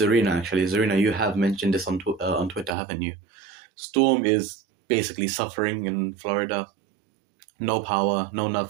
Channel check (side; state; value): left; drops out; at 2.8 s